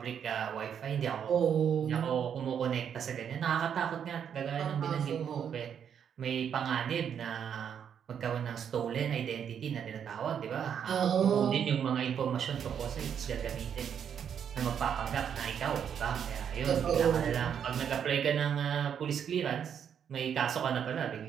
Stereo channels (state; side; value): quieter; left; 8.2 dB